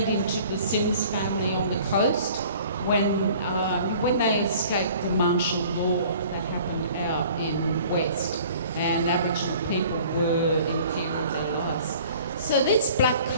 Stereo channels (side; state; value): both; inverted; correlation -0.50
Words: into the Sims family on the coast when they escaped the martial law that happened out in West. And Aboriginal people were in people's areas. So this black